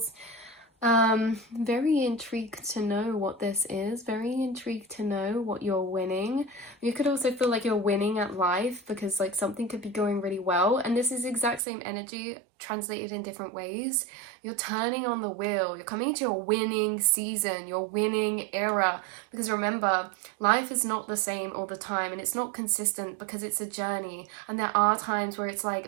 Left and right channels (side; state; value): left; drops out; at 11.6 s